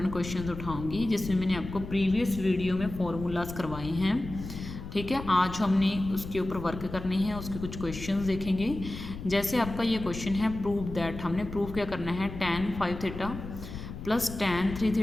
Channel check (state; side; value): noise; left; rumble, 10 dB below the sound